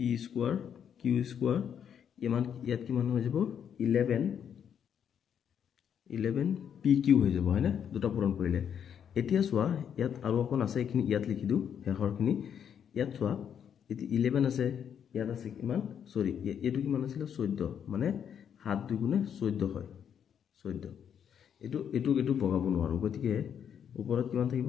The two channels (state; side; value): quieter; right; 8.4 dB